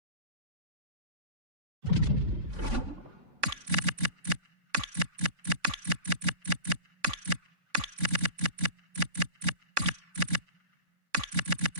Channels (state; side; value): late; left; 3.5 ms